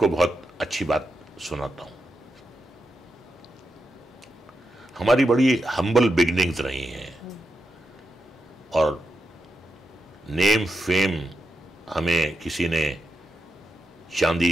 बहुत अच्छी बात सुनाता हूँ। हमारी बड़ी हम्बल बिगनिंग्स रही हैं, और नेम फेम हमें किसी ने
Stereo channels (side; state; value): both; normal; correlation 0.86